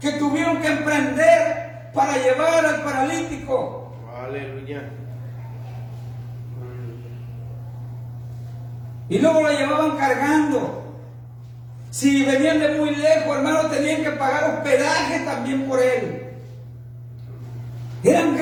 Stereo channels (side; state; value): both; identical; correlation 1.00